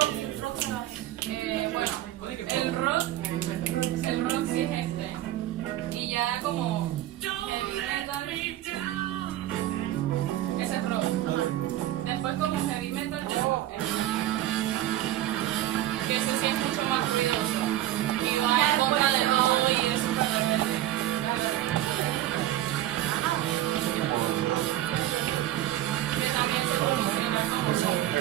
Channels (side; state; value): left; quieter; 13.7 dB